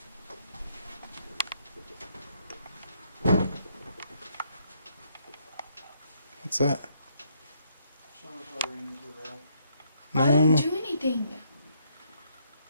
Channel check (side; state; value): both; inverted; correlation -0.72